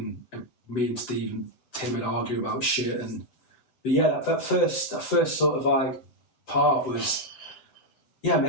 me and Steve and Tim would argue about shit. But yeah, that first sort of like part was,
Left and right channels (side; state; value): right; late; 7.8 ms